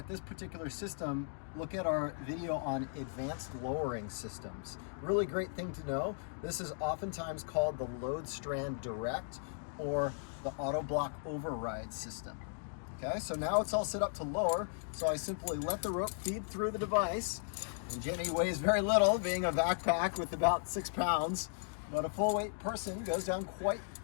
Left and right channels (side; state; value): right; silent; digital silence